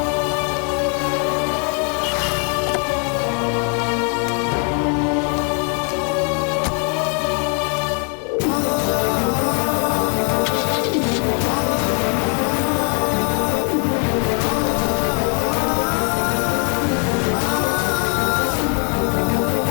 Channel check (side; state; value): right; quieter; 39.9 dB